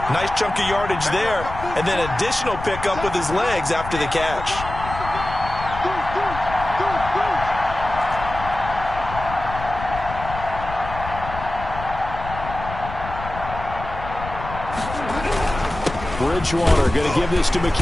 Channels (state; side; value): noise; left; rumble, 10 dB below the sound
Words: nice chunk of yardage there, and then additional pickup with his legs after the catch. Bridgewater going to give this to